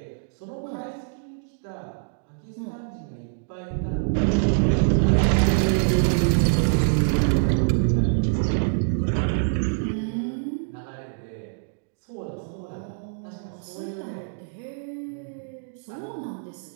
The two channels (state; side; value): silent; left; digital silence